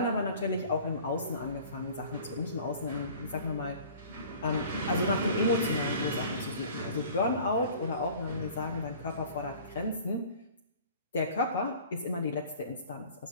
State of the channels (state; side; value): inverted; both; correlation -0.46